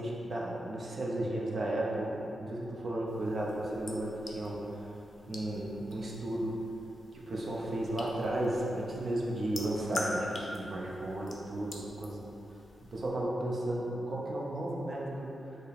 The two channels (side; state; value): both; normal; correlation 0.87